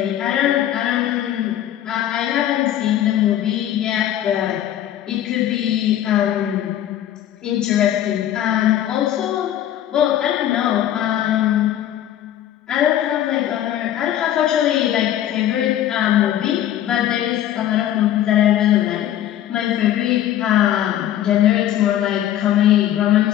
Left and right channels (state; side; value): quieter; right; 11.8 dB